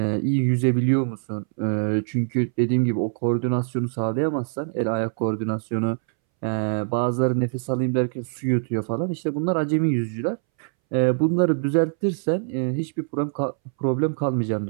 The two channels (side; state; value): left; silent; 63 dB below the other